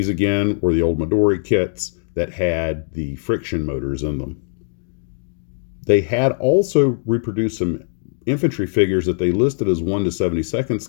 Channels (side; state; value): right; silent; 60 dB below the other